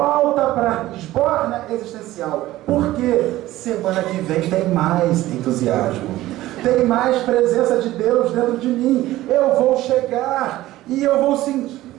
para a esborna existencial. Porque semana que vem tem mais entusiasmo, tem mais presença de Deus dentro de mim. Eu vou chegar e eu vou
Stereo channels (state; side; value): quieter; left; 16.0 dB